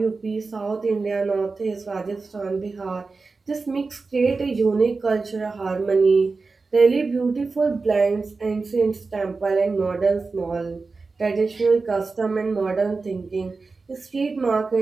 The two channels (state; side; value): quieter; left; 4.1 dB